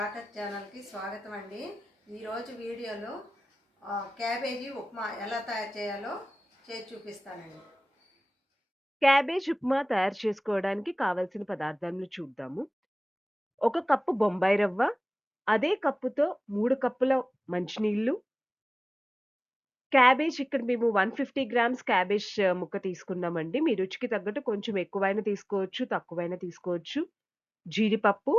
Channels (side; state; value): both; normal; correlation 0.98